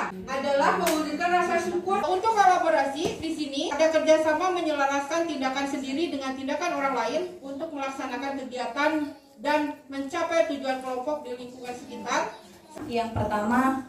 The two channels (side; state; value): both; identical; correlation 1.00